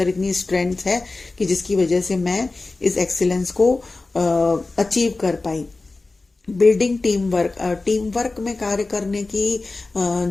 इतनी स्ट्रेंथ है कि जिसकी वजह से मैं इस एक्सीलेंस को अचीव कर पाई। Building team work, team work में कार्य करने की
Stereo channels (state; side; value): quieter; right; 3.4 dB